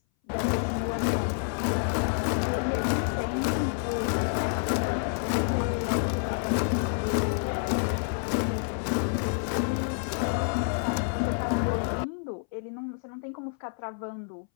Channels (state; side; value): silent; right; 59 dB below the other